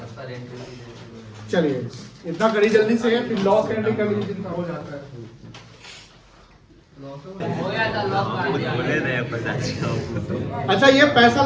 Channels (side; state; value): both; identical; correlation 1.00